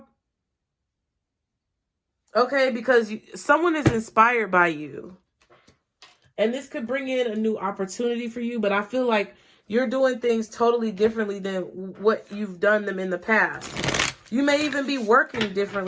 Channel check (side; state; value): both; identical; correlation 1.00